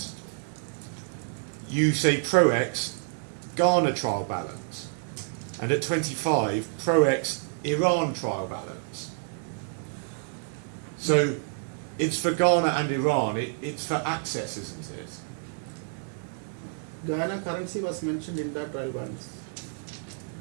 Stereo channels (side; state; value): left; silent; 59 dB below the other